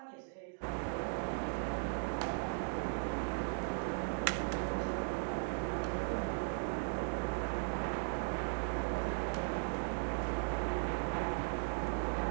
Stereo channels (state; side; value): silent; left; digital silence